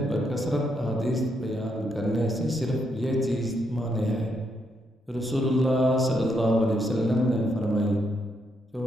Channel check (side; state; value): both; normal; correlation 0.78